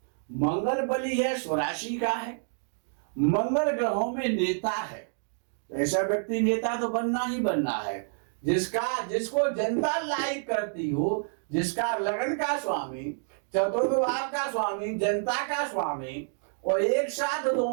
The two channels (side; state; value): left; silent; digital silence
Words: मंगल बली है, स्वराशि का है, मंगल ग्रहों में नेता है। ऐसा व्यक्ति नेता तो बनना ही बनना है जिसको जनता लाइक करती हो, जिसका लगन का स्वामी, चतुर्थ भाव का स्वामी, जनता का स्वामी और एक साथ